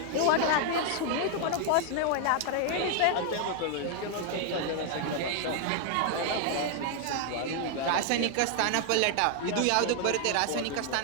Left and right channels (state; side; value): different; both; correlation 0.00